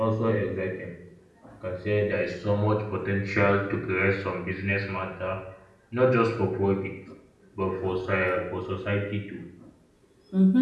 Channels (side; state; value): both; identical; correlation 1.00